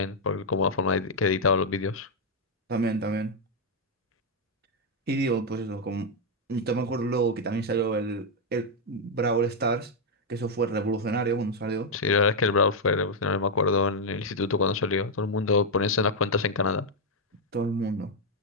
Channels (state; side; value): normal; both; correlation -0.02